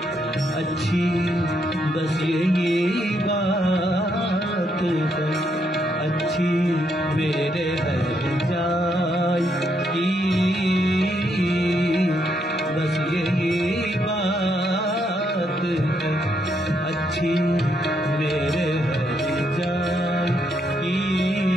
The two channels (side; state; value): both; normal; correlation 0.76